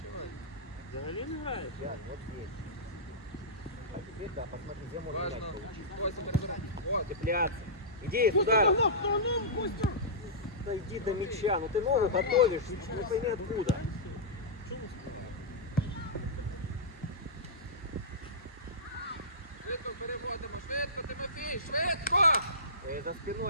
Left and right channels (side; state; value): both; normal; correlation -0.18